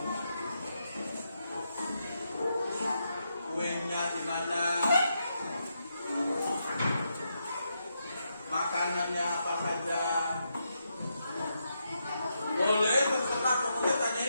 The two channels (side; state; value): both; inverted; correlation -0.82